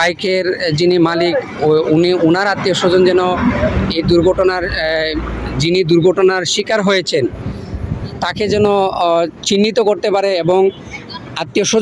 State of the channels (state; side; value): identical; both; correlation 1.00